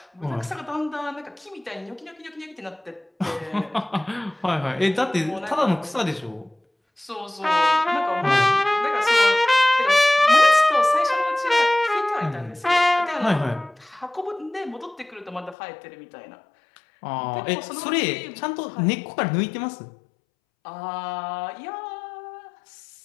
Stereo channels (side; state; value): right; drops out; at 15.6 s